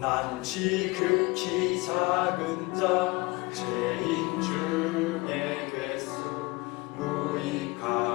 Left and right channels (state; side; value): quieter; right; 23.9 dB